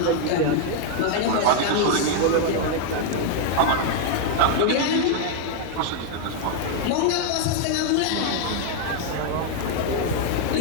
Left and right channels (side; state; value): both; different; correlation 0.00